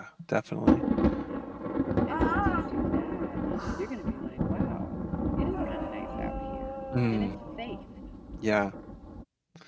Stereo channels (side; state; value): both; identical; correlation 1.00